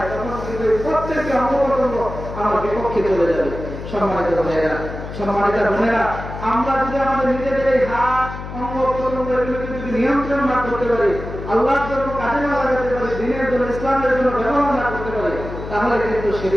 তখন কিন্তু প্রত্যেকটি অঙ্গপ্রত্যঙ্গ আমার বিপক্ষে চলে যাবে। সম্মানিত ভাইয়েরা, সম্মানিত বোনেরা, আমরা যদি আমাদের নিজেদের এই হাত অঙ্গপ্রত্যঙ্গ এগুলোকে যদি নিয়ন্ত্রণ না করতে পারি, আল্লাহর জন্য কাজে না লাগাতে পারি, দিনের জন্য ইসলামের জন্য ব্যবহার না করতে পারি, তাহলে কিন্তু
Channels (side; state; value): left; noise; hum, 9 dB below the sound